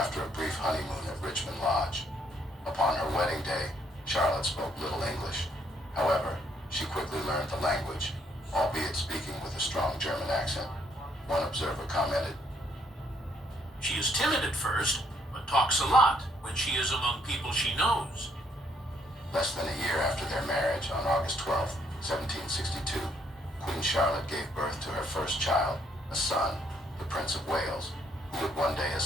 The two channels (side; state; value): both; normal; correlation 0.70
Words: a brief honeymoon at Richmond Lodge. Upon her wedding day, Charlotte spoke little English. However, she quickly learned the language, albeit speaking with a strong German accent. One observer commented, "She is timid at first, but talks a lot when she is among people she knows." Less than a year after their marriage, on August 12, 1762, Queen Charlotte gave birth to her first child, a son, the Prince of Wales, who would one day